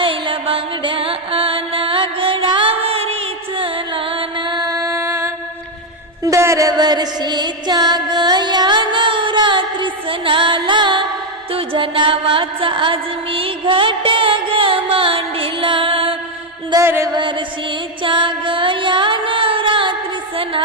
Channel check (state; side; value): normal; both; correlation 0.04